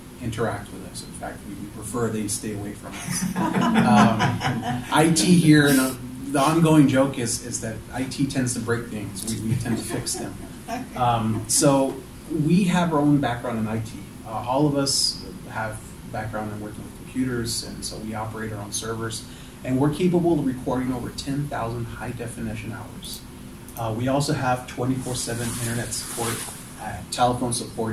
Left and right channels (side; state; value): both; identical; correlation 1.00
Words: interact with us. In fact, we prefer they stay away from us. IT here, and the ongoing joke is that IT tends to break things. We tend to fix them. So we have our own background in IT. All of us have background in working with computers, and so we operate our own servers. And we're capable of recording over 10,000 high-definition hours. We also have 24/7 internet support, telephone